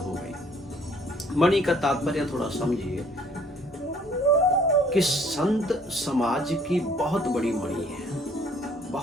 गई। मणि का तात्पर्य थोड़ा समझिए कि संत समाज की बहुत बड़ी मणि है,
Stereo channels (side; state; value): both; normal; correlation 0.59